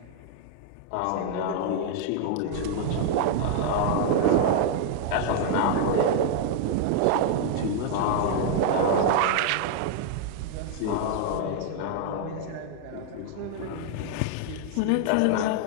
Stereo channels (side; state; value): both; different; correlation 0.00